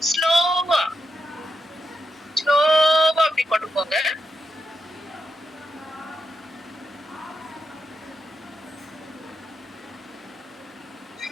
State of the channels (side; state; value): both; normal; correlation 0.85